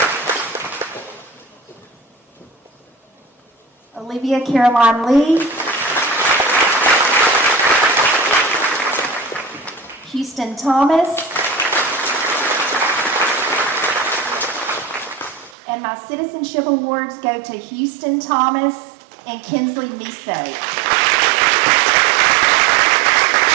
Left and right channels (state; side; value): drops out; left; at 15.6 s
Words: Olivia Caroline Lee, Houston Thomas, and my citizenship awards go to Houston Thomas and Kinsley Miso.